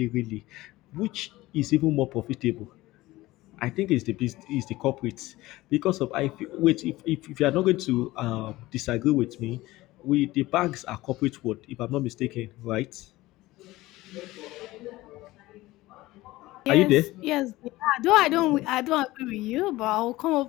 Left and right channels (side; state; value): right; quieter; 18.3 dB